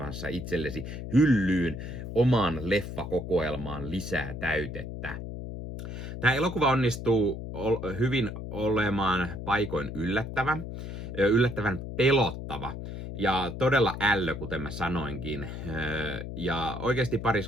itsellesi hyllyyn omaan leffakokoelmaan lisää täytettä. Tämä elokuva onnistuu hyvin olemaan paikoin yllättävän pelottava ja todella ällö, kuten mä sanoinkin. Ja oikeasti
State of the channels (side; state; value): left; noise; hum, 8 dB below the sound